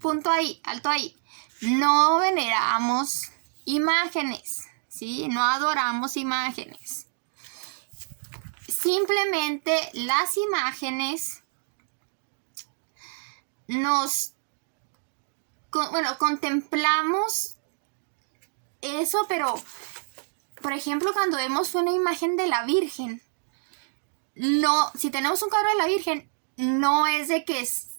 ahí, alto ahí. No veneramos imágenes, ¿sí? No adoramos imágenes. Simplemente las imágenes contemplamos eso, pero, por ejemplo, cuando vemos una imagen de la Virgen, no, si tenemos un cuadro de la Virgen, no es de que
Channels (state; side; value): silent; left; digital silence